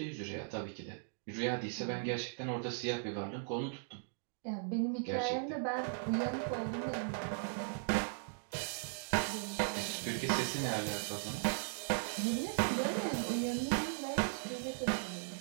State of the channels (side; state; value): left; silent; digital silence